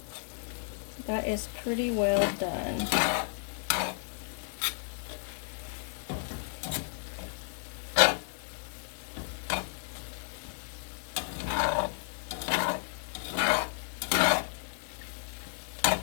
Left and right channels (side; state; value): right; silent; digital silence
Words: that is pretty well done.